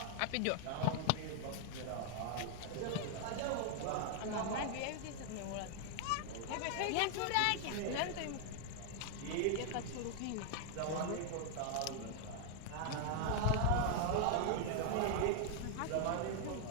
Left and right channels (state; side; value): different; both; correlation 0.00